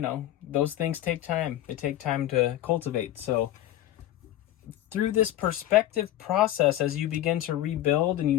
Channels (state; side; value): quieter; right; 13.4 dB